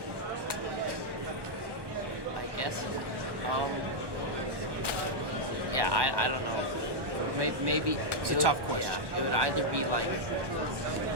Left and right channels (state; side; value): late; left; 1.2 ms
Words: I guess, yeah, I don't know. Maybe it's a tough question. Yeah, it would either be like